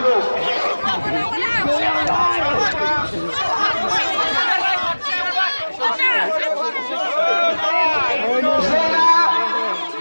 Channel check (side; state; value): both; inverted; correlation -1.00